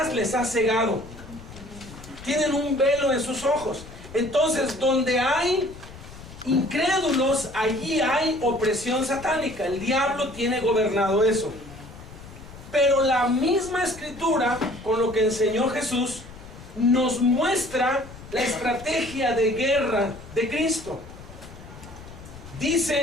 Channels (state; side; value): noise; left; rumble, 16 dB below the sound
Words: les ha cegado. Tienen un velo en sus ojos. Entonces, donde hay incrédulos, allí hay opresión satánica. El diablo tiene gobernado eso. Pero la misma escritura, con lo que enseñó Jesús, nos muestra la estrategia de guerra de Cristo.